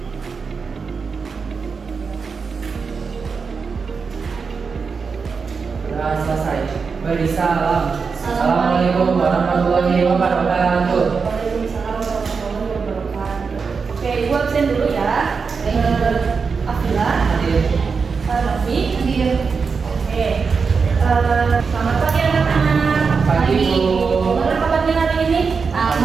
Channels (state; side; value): quieter; left; 5.2 dB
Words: Doa selesai. Beri salam. Assalamualaikum warahmatullahi wabarakatuh. Waalaikumsalam warahmatullahi wabarakatuh. Oke, Ibu absen dulu ya. Afila, Hadir. Novi. Hadir. Oke. Selamat pagi anak-anak. Pagi, Bu. Gimana kabarnya hari ini?